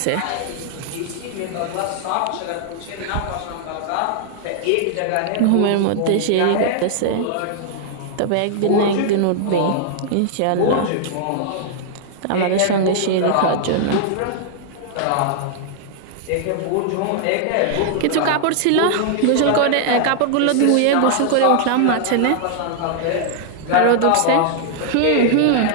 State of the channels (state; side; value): different; both; correlation -0.01